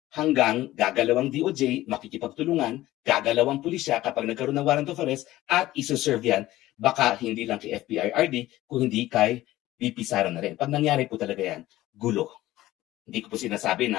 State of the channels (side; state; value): right; quieter; 16.0 dB